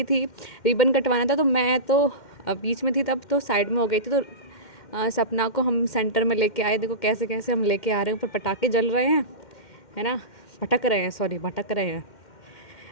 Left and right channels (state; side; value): late; right; 2.1 ms